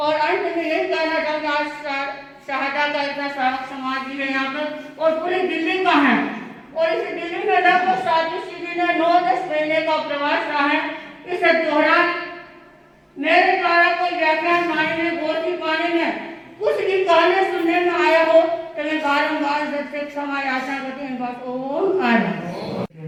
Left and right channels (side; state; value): both; identical; correlation 1.00